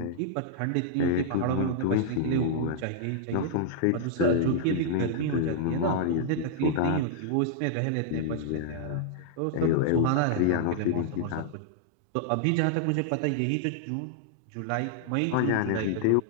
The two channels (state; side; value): different; both; correlation -0.01